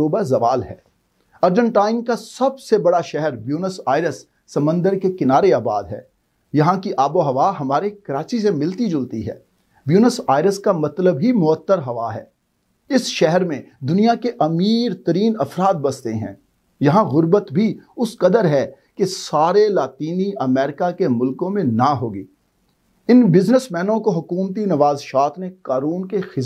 ज़वाल है। अर्जेंटाइन का सबसे बड़ा शहर ब्यूनस आयरस समंदर के किनारे आबाद है। यहाँ की आबो हवा हमारे कराची से मिलती जुलती है। ब्यूनस आयरस का मतलब ही मुअत्तर हवा है। इस शहर में दुनिया के अमीर तरीन अफराद बसते हैं। यहाँ गुर्बत भी उस कदर है कि सारे लातीनी अमेरिका के मुल्कों में ना होगी। इन बिजनेसमैनों को हुकूमती नवाज़शात ने कानून के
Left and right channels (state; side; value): identical; both; correlation 1.00